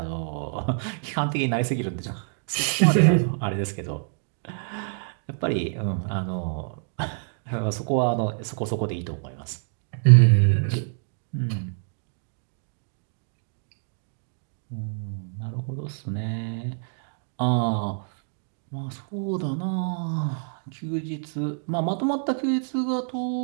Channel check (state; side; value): silent; left; digital silence